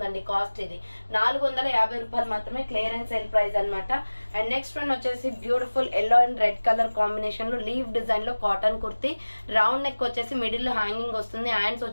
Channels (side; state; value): both; inverted; correlation -1.00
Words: కాస్ట్ ఇది 450 రూపాయలు మాత్రమే. క్లియరెన్స్ సేల్ ప్రైస్ అనమాట. అండ్ నెక్స్ట్ వన్ వచ్చేసి beautiful yellow and red colour combination లో లీవ్ డిజైన్ లో కాటన్ కుర్తీ. రౌండ్ నెక్ వచ్చేసి మిడిల్ లో హ్యాంగింగ్ వస్తుంది. హ్యాండ్స్